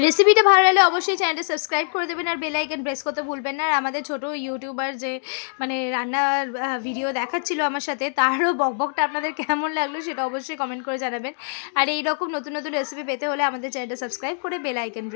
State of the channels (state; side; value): silent; right; digital silence